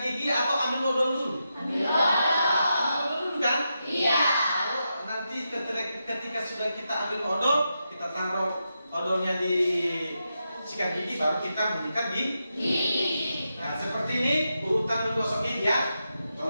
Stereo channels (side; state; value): both; inverted; correlation -0.87